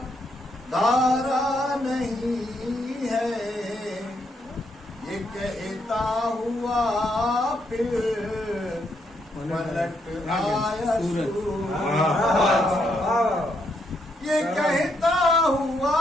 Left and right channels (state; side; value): normal; both; correlation 0.76